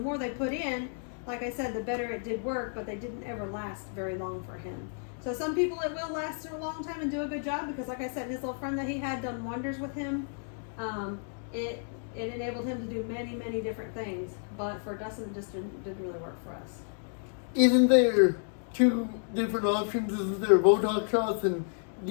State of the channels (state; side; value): silent; right; 57 dB below the other